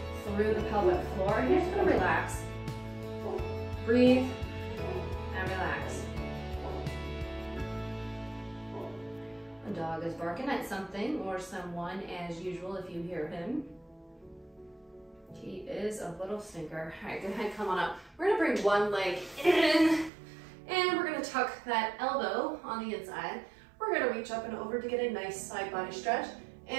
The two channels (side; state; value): left; drops out; at 20.1 s